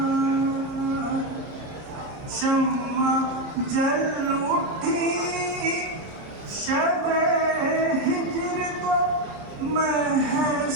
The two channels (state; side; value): late; left; 30 ms